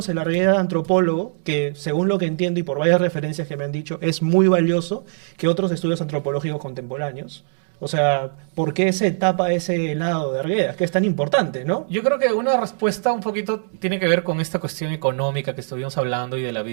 el Arguedas antropólogo, que según lo que entiendo y por varias referencias que me han dicho, es muy valioso que otros estudios antropológicos contemporáneos? O sea, ¿por qué se tapa ese lado de Arguedas, que es tan importante, no? Yo creo que una respuesta un poquito tiene que ver con esta cuestión económica que estuvimos hablando y de la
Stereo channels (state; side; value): silent; left; digital silence